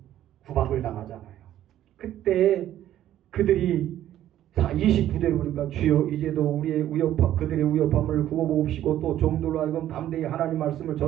구박을 당하잖아요. 그때 그들이 29절에 보니까 주여 이제도 우리의 그들의 위협함을 굽어보옵시고 또 종들로 하여금 담대히 하나님 말씀을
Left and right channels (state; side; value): quieter; left; 12.3 dB